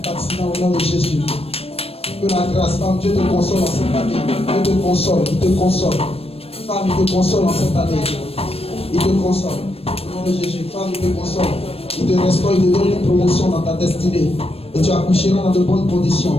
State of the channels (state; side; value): late; right; 0.28 ms